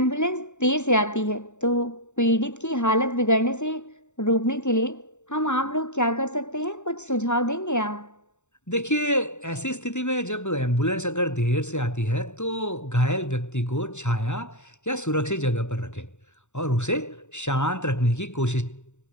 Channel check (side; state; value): right; late; 0.84 ms